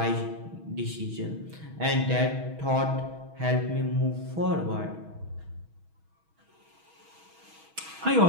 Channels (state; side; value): late; left; 6.2 ms